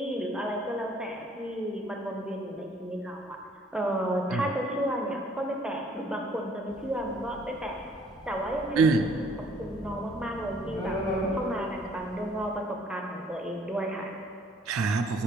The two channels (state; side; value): normal; both; correlation 0.60